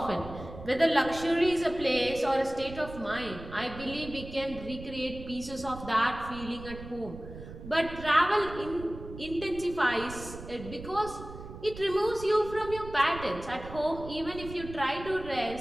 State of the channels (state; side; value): noise; right; rumble, 13 dB below the sound